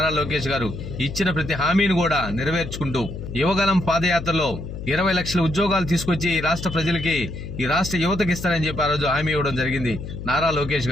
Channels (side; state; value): left; noise; hum, 9 dB below the sound